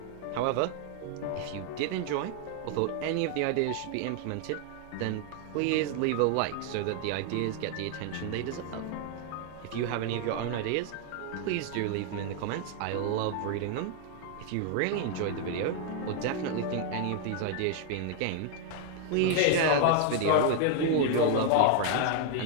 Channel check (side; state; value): both; different; correlation 0.00